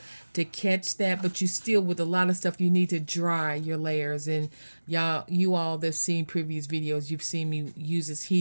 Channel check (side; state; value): both; inverted; correlation -1.00